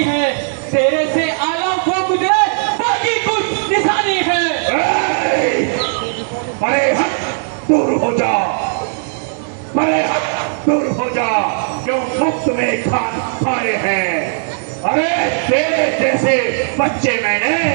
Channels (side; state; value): left; silent; digital silence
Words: है, तेरे से आला वो गुजरे बाकी कुछ निशानी है। बड़े हट दूर हो जा, बड़े हट दूर हो जा, क्यों मुफ्त में खान खाए हैं? अरे तेरे जैसे बच्चे मैंने